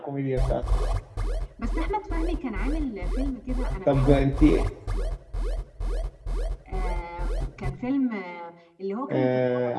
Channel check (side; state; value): both; identical; correlation 1.00